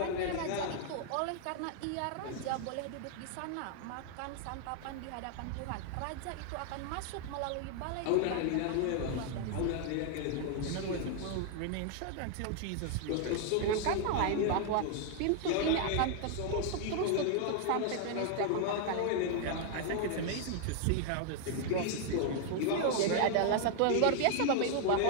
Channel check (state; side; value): different; both; correlation 0.00